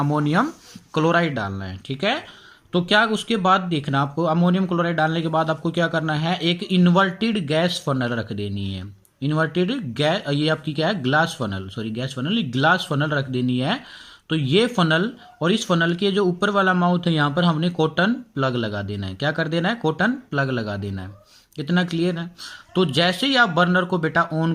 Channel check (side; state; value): both; identical; correlation 1.00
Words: क्लोराइड डालना है, ठीक है। तो क्या उसके बाद देखना आपको, अमोनियम क्लोराइड डालने के बाद आपको क्या करना है, एक इन्वर्टेड गैस फनल रख देनी है। इन्वर्टेड गैस, ये आपकी क्या है, glass funnel, sorry gas funnel, glass funnel रख देनी है। तो ये फनल और इस फनल के जो ऊपर वाला माउथ है यहाँ पर हमने कॉटन प्लग लगा देना है। क्या कर देना है, कॉटन प्लग लगा देना है। इतना क्लियर है। तो जैसे ही आप बर्नर को बेटा ऑन